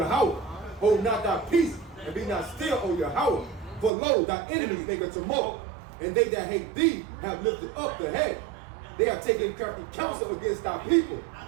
Hold not thy peace, and be not still, O Yahweh. For lo, thy enemies make a tumult, and they that hate thee have lifted up the head. They have taken crafty counsel against thy people,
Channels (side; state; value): left; drops out; at 3.9 s